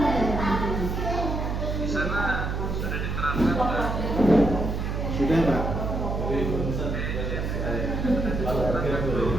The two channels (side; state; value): right; noise; hum, 2 dB below the sound